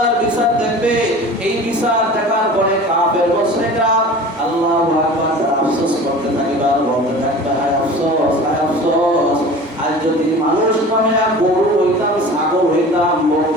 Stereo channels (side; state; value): both; normal; correlation 0.39